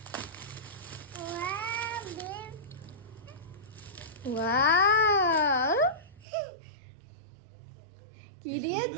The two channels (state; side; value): drops out; left; at 6.2 s